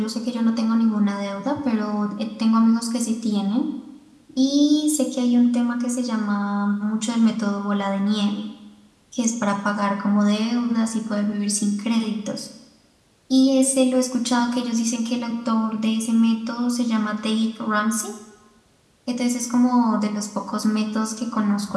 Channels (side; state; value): both; identical; correlation 1.00